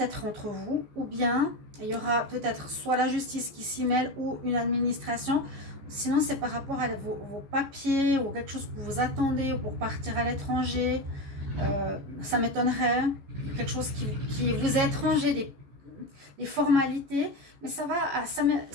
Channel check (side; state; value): left; late; 14 ms